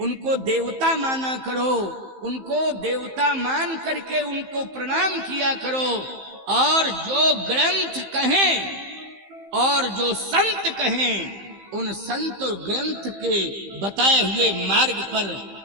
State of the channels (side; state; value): left; late; 15 ms